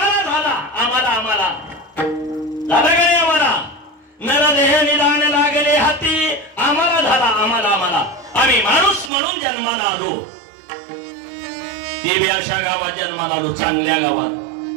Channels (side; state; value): left; drops out; at 9.1 s